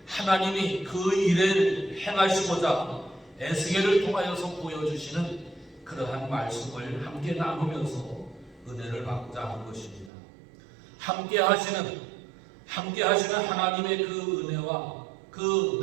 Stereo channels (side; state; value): left; drops out; at 10.1 s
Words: 하나님이 그 일을 행하시고자 에스겔을 통하여서 보여주시는 그러한 말씀을 함께 나누면서 은혜를 받고자 하는 것입니다. 함께 하시는 하나님의 그 은혜와 그